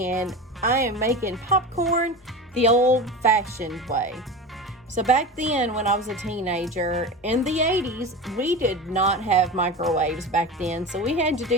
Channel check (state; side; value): normal; both; correlation 0.28